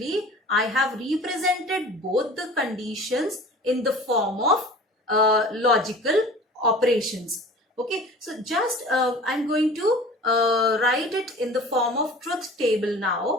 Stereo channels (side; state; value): both; normal; correlation 0.42